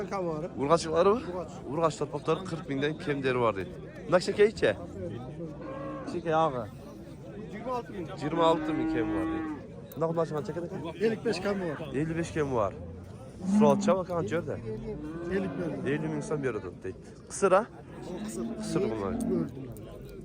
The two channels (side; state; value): both; identical; correlation 1.00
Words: kam var. Urgaçlıkları mı? Urgaç torpakları 40 binden kemderi var deydi. Bundan şeker içe? Şeker ağa. 26 bin. 26 bin kem var deydi. Ne kadar açman çeker eken? 55 kam var. 55 kem var. Sual çabuk kan görde. 50 bin. 50 bin insan bir arada deydi. Kısır ha? Kısır bunlar.